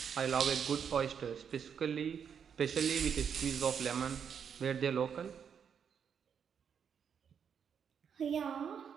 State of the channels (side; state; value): left; quieter; 7.4 dB